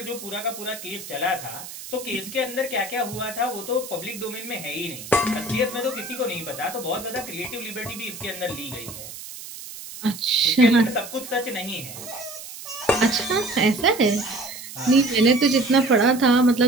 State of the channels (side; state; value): right; noise; hiss, 12 dB below the sound